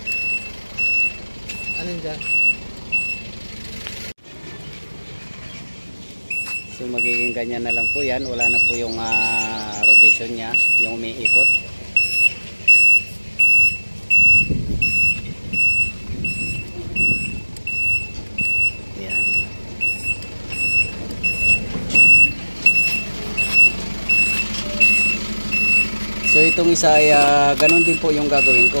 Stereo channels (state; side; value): inverted; both; correlation -1.00